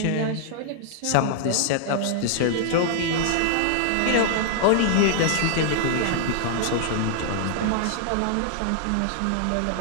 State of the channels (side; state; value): both; different; correlation -0.01